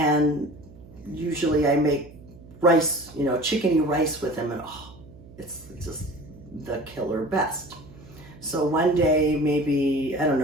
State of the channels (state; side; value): noise; right; hum, 20 dB below the sound